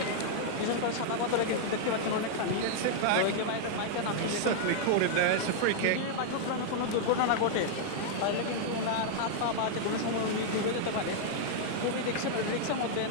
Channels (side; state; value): both; different; correlation -0.01